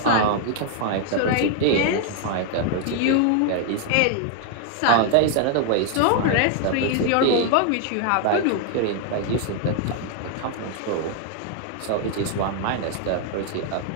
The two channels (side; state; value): both; different; correlation 0.00